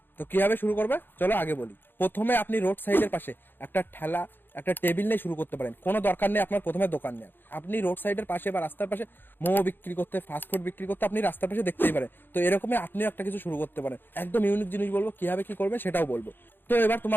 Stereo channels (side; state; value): right; late; 0.097 ms